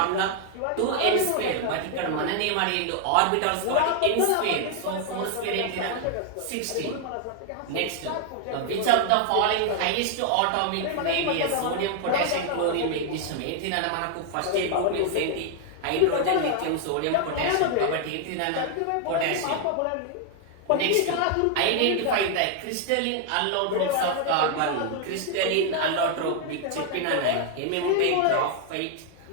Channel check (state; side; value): different; both; correlation 0.00